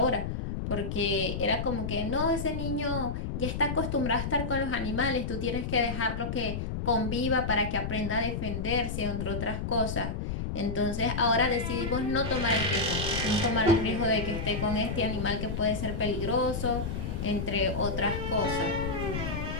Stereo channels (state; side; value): noise; left; rumble, 3 dB below the sound